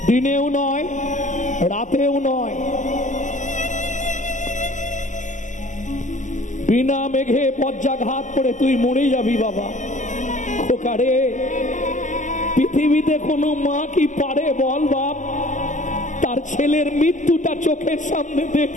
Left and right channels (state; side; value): late; right; 0.37 ms